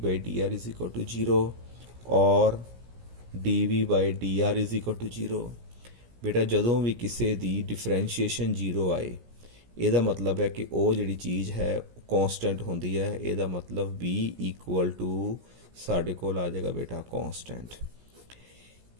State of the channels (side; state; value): left; late; 17 ms